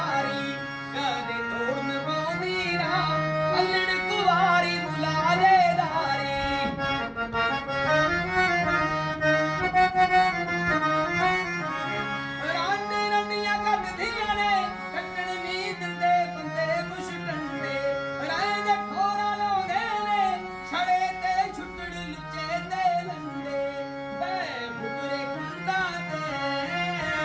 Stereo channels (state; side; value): identical; both; correlation 1.00